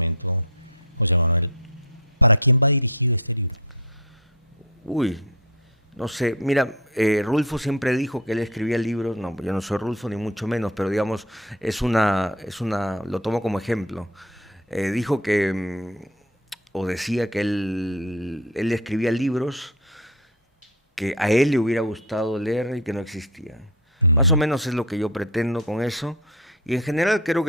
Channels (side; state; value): both; normal; correlation 0.24